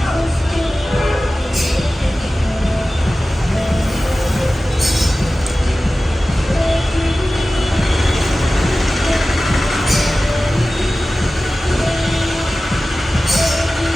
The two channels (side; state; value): both; normal; correlation 0.96